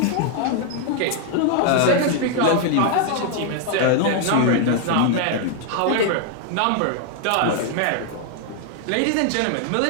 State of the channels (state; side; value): different; both; correlation 0.00